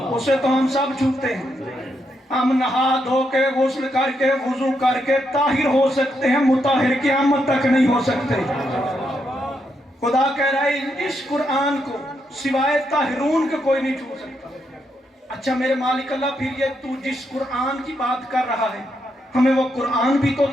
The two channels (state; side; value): normal; both; correlation 0.80